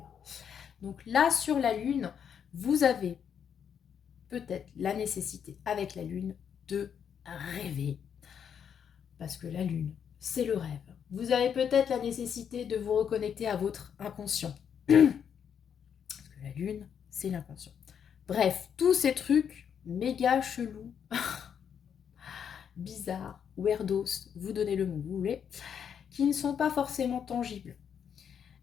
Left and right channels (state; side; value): quieter; right; 7.9 dB